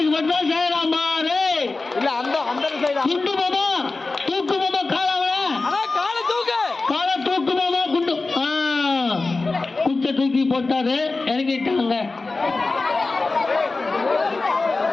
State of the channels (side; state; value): right; quieter; 3.6 dB